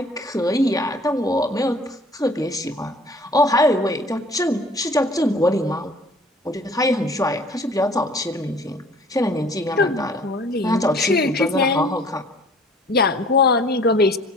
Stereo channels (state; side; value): normal; both; correlation 0.52